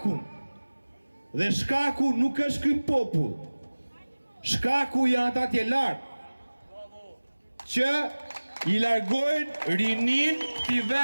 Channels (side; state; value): both; inverted; correlation -1.00